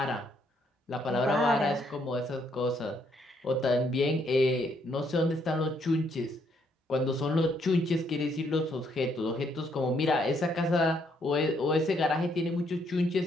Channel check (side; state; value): both; normal; correlation 0.71